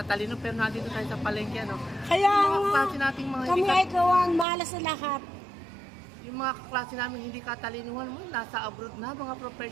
pero nandito tayo sa palengke, ano? Kaya Yung mga nga, klase nating mga kami hindi ay kawan, malas sa lahat. yung mga klase namin hindi katalinuhan mo, nasa abroad na, mga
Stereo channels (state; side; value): drops out; left; at 4.5 s